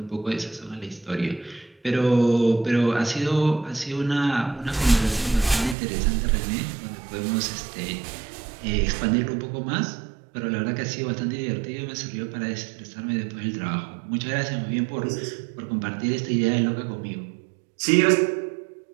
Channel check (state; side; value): drops out; left; at 5.8 s